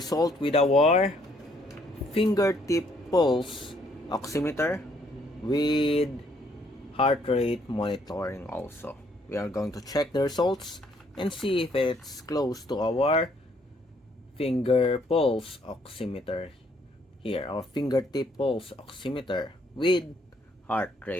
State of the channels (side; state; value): both; normal; correlation 0.67